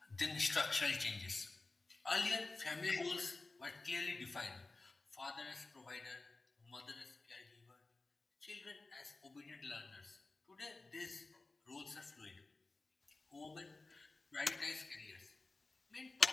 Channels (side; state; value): right; quieter; 3.4 dB